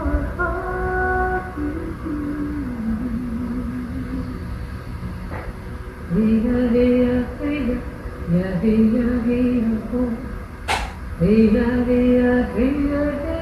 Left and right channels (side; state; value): both; identical; correlation 1.00